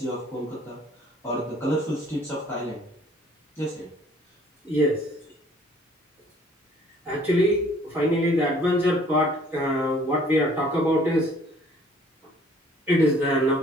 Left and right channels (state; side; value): normal; both; correlation 0.57